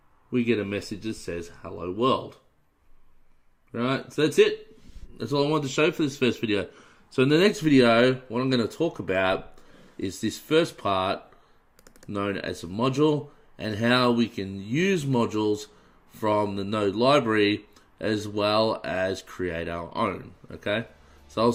we get a message that says hello world. Right. So that's it. That's all I wanted to show for this first video. So in the next video, what I'm going to talk about is this first part known as a module and how we can use modules from the Node library as well as create our own. Okay, so I'll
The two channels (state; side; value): identical; both; correlation 1.00